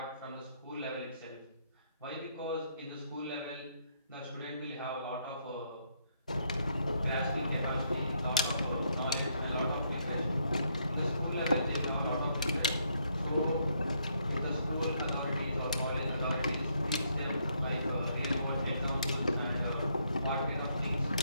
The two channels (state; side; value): inverted; both; correlation -0.73